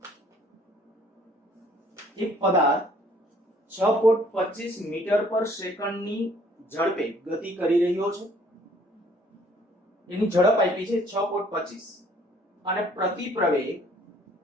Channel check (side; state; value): both; normal; correlation 0.59